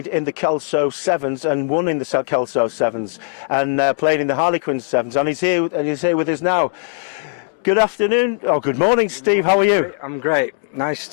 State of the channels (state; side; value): silent; right; digital silence